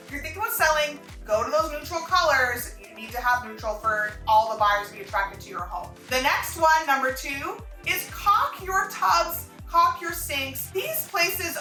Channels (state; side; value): identical; both; correlation 1.00